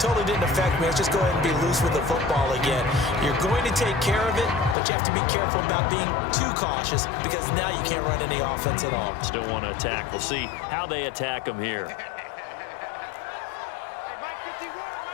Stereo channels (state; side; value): drops out; right; at 4.8 s